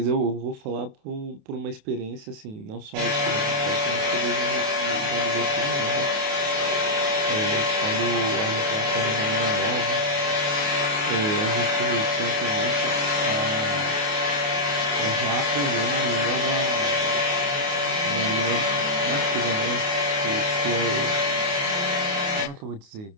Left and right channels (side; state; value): left; late; 28 ms